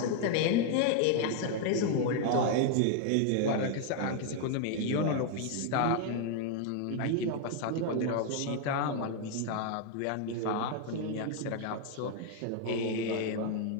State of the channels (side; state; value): both; different; correlation 0.00